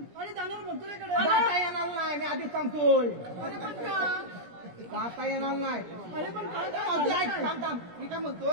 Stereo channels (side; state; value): left; late; 17 ms